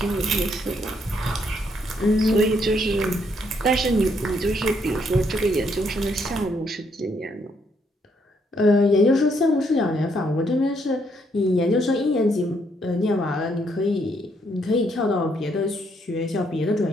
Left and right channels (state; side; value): normal; both; correlation 0.73